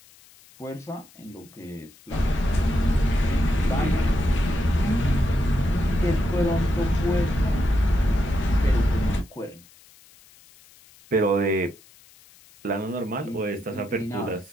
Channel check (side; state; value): left; noise; hiss, 26 dB below the sound